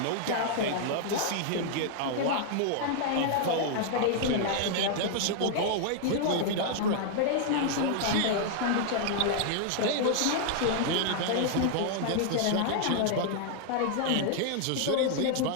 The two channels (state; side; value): different; both; correlation 0.00